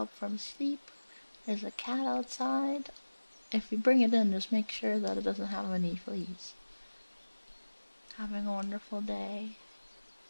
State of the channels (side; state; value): both; inverted; correlation -1.00